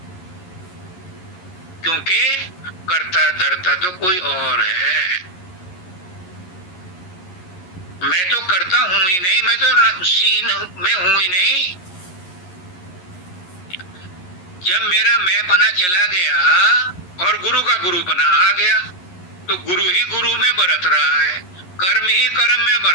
क्योंकि कर्ता धर्ता तो कोई और है। मैं तो करता हूं ही नहीं, मैं तो सीन में हूं ही नहीं। जब मेरा मैं पना चला गया और गुरु का गुरु पना आ गया, तो गुरु ही गुरु में बरत रहा है, कर्म ही कर्म में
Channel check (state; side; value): late; right; 11 ms